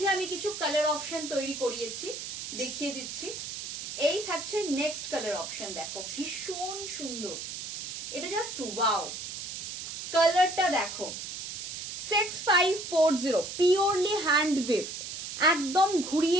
আমি কিছু কালার অপশন তৈরি করিয়েছি, দেখিয়ে দিচ্ছি। এই থাকছে নেক্সট কালার অপশন, দেখো ভীষণ সুন্দর, এটা জাস্ট ওয়াও, কালারটা দেখো। 6540 प्योरली हैंड विफ्ट, एकदम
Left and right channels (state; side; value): noise; right; hiss, 7 dB below the sound